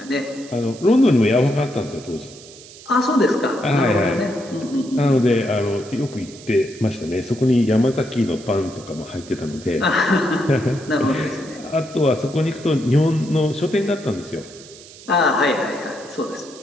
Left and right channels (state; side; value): noise; right; hiss, 19 dB below the sound